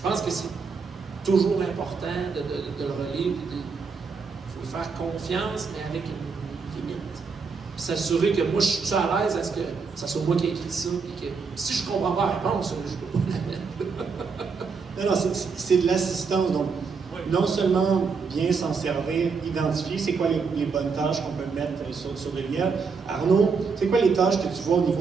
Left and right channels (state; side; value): quieter; left; 5.1 dB